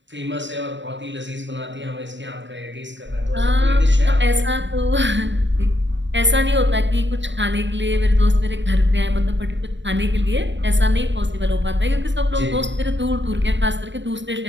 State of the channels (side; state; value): left; late; 0.53 ms